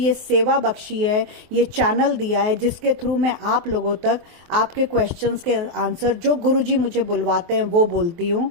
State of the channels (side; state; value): left; late; 23 ms